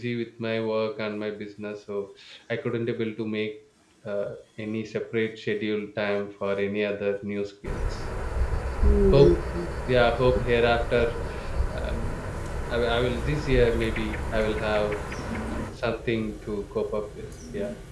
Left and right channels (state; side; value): identical; both; correlation 1.00